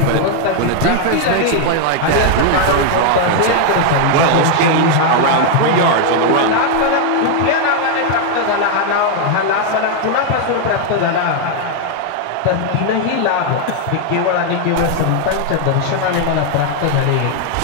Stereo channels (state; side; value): different; both; correlation 0.00